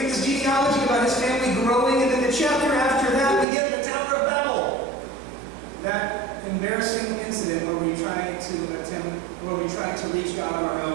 get this genealogy about his family growing, and then the chapter after that, we get the Tower of Babel. That embarrassing incident where we try to reach God on our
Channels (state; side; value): drops out; left; at 3.5 s